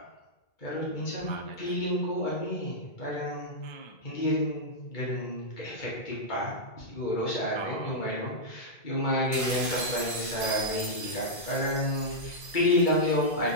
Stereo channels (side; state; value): right; late; 1.7 ms